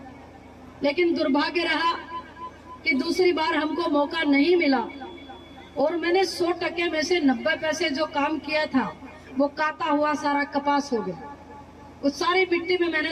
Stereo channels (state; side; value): identical; both; correlation 1.00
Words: लेकिन दुर्भाग्य रहा कि दूसरी बार हमको मौका नहीं मिला, और मैंने 100% में से 90 पैसे जो काम किया था वो काटा हुआ सारा कपास हो गया। उस सारी मिट्टी में